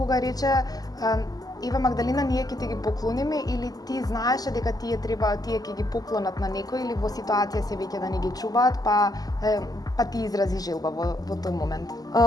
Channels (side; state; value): right; late; 0.18 ms